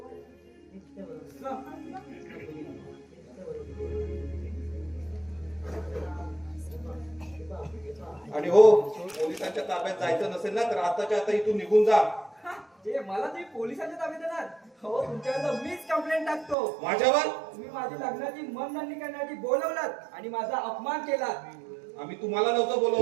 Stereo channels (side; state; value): left; drops out; at 16.6 s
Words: आणि हो पोलिसांच्या ताब्यात जायचं नसेल ना तर आताच्या आता इथून निघून जा. ते मला तुम्ही पोलिसांच्या ताब्यात देणार? हो तुमच्यावर मीच कंप्लेंट टाकतो. माझ्यावर तुम्ही माझी लग्नाची मनधरणी करण्यासाठी बोलवलात आणि माझा अपमान केलात. आम्ही तुम्हाला नव्हतं